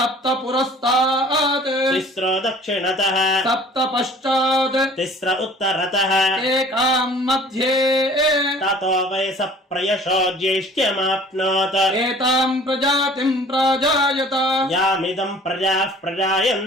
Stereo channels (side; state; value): both; normal; correlation 0.49